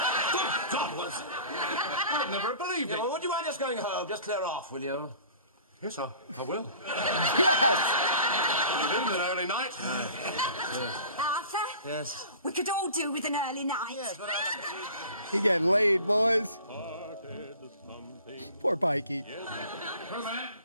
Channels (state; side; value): inverted; both; correlation -0.44